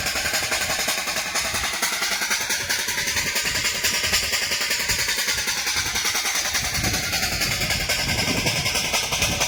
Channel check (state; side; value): identical; both; correlation 1.00